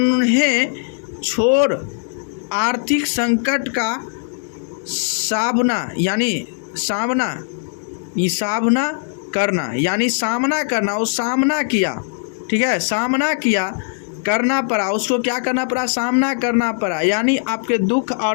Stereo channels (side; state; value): right; silent; digital silence